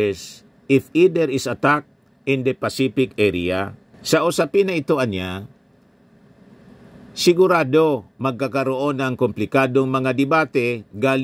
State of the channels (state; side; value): identical; both; correlation 1.00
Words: if either is attacked in the Pacific area. Sa usapin na ito, sigurado magkakaroon ng komplikadong mga debate